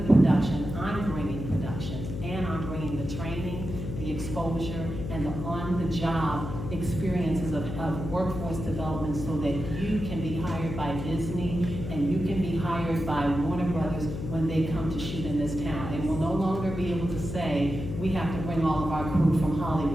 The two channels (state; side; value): noise; left; hum, 6 dB below the sound